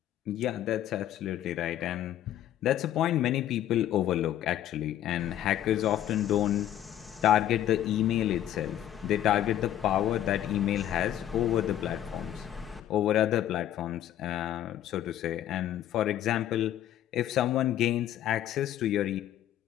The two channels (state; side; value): quieter; right; 11.8 dB